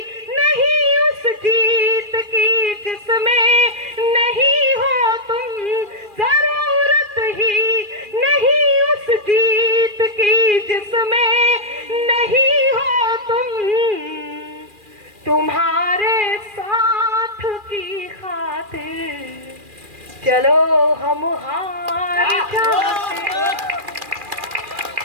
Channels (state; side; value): late; left; 2.4 ms